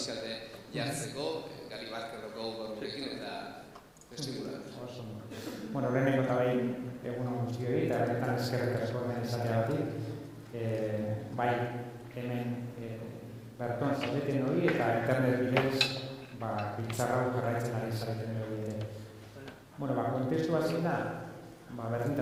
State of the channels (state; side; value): identical; both; correlation 1.00